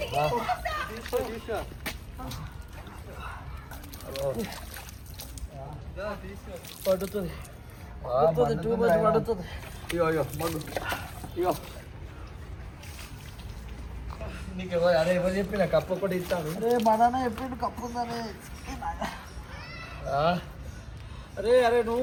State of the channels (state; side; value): identical; both; correlation 1.00